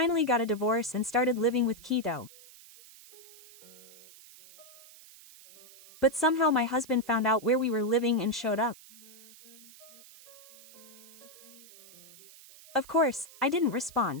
got a divorce and started living with Kito. But somehow my husband found out where we were living and showed up. Of course, I didn't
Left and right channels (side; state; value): right; noise; hiss, 21 dB below the sound